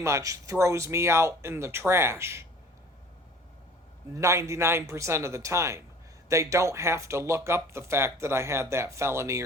throws me out in the trash 99% of the time. They don't have to look up the fact that I had that felony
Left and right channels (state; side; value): normal; both; correlation 0.47